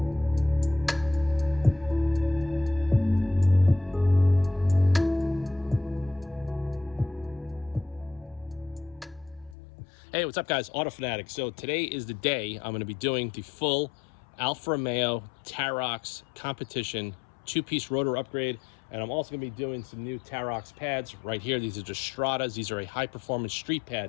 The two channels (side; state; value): right; drops out; at 9.6 s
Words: what's up guys? Autofanatic. So today is the day I'm going to be doing the full Alfa Romeo TAROX competition 2-piece rotor upgrade, and I'm also going to be doing some new TAROX pads right here. These are just Stratas. These are a high performance street pad.